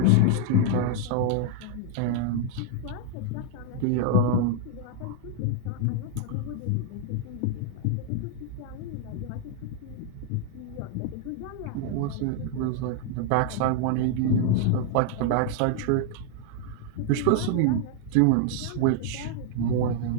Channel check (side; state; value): both; different; correlation 0.00